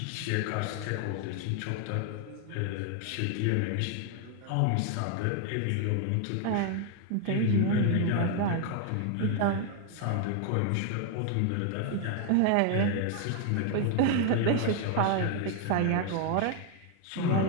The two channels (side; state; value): both; different; correlation 0.00